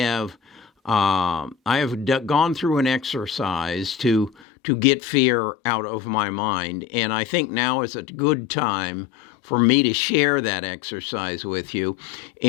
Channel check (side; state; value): right; drops out; at 4.3 s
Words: gone through an exercise to get fear out of my mind, and I think now is a good time for me to share that exercise with you.